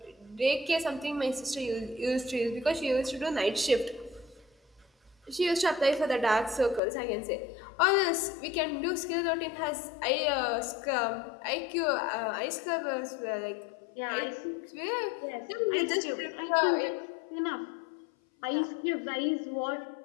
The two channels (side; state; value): right; drops out; at 6.8 s